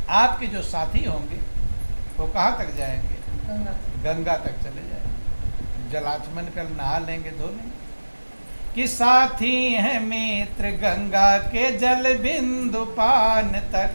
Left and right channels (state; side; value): inverted; both; correlation -1.00